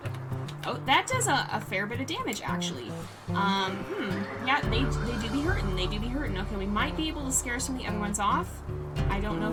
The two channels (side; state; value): both; identical; correlation 1.00